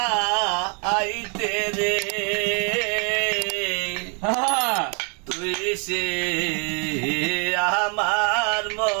আইতে রে তুই সে আমার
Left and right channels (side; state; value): left; quieter; 36.3 dB